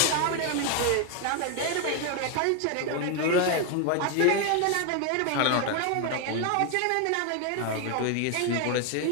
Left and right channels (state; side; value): different; both; correlation 0.01